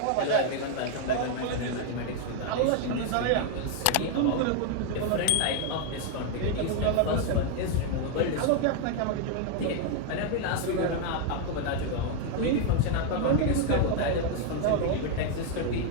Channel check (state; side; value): different; both; correlation 0.01